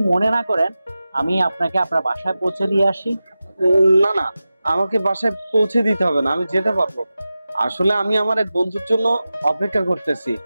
মনে না করেন, আমি আপনাকে আপনার বাসায় পৌঁছে দিয়ে আসি। না না, আমাকে বাসায় পৌঁছে দিতে হবে না, আমি যেতে পারবো। আসলে আমি আমার এক বন্ধুর জন্য অপেক্ষা করতেছি,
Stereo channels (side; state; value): both; inverted; correlation -0.94